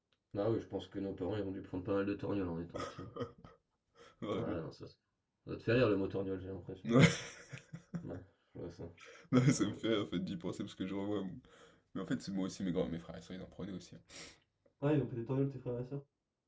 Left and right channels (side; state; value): both; identical; correlation 1.00